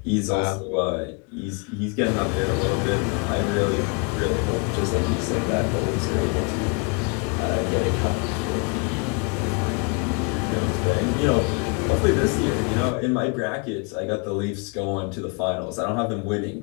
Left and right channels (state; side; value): quieter; right; 33.5 dB